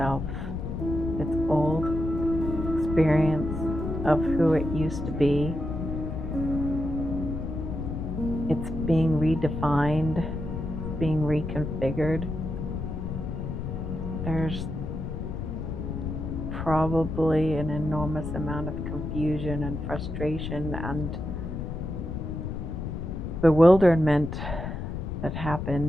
its old experience of who it used to be. It's being redefined, it's being reconfigured. There's probably an enormous amount of confusion and frustration and bewilderment that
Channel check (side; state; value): left; noise; rumble, 4 dB below the sound